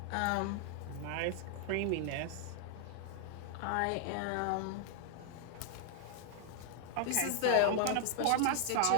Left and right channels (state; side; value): different; both; correlation 0.00